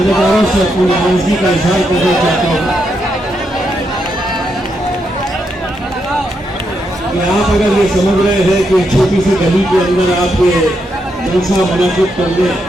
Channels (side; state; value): both; normal; correlation 0.81